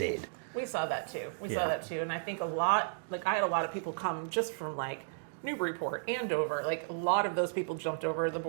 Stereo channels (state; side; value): silent; left; digital silence